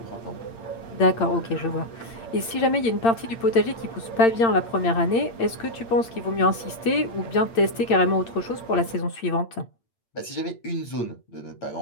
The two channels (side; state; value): right; late; 8.8 ms